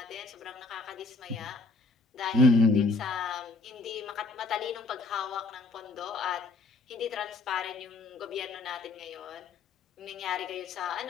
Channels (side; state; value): right; quieter; 3.6 dB